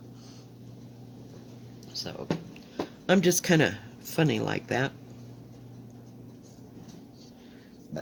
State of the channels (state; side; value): identical; both; correlation 1.00